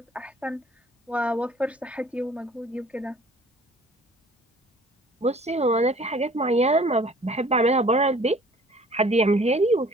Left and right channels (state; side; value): normal; both; correlation 0.52